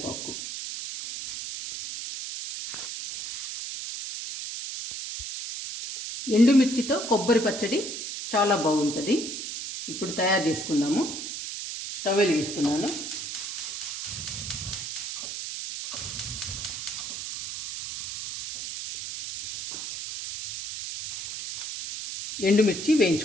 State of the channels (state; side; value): noise; right; hiss, 6 dB below the sound